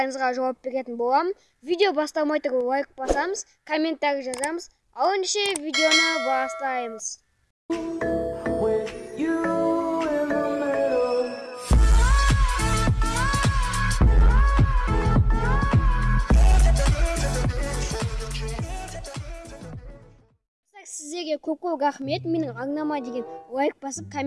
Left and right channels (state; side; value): identical; both; correlation 1.00